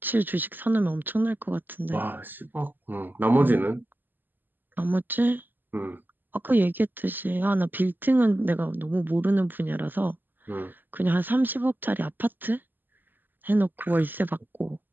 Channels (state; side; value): late; left; 0.090 ms